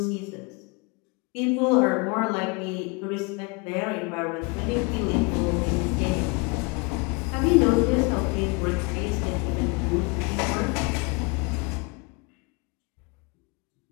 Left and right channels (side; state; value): right; quieter; 29.2 dB